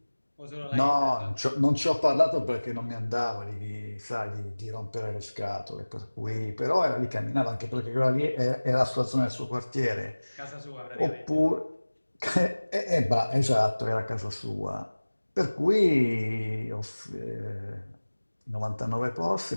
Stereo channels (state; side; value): inverted; both; correlation -1.00